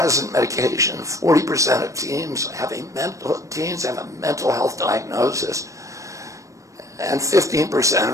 medication. 40% of teens have a mental health diagnosis. And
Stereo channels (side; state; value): left; late; 0.15 ms